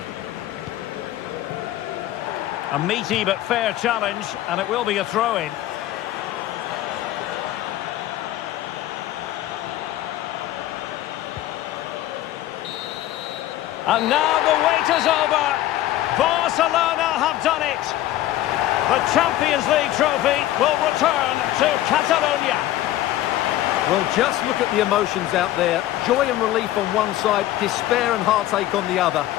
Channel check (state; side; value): quieter; right; 14.3 dB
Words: A meaty but fair challenge, and it will be a throw-in. And now the wait is over. Barcelona have done it. The Champions League trophy will return to Catalonia. Well, just look at the emotions out there. Joy and relief on one side, despair and heartache on the other.